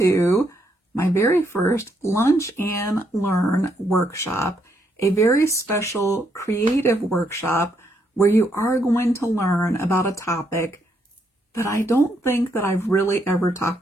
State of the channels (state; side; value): normal; both; correlation 0.75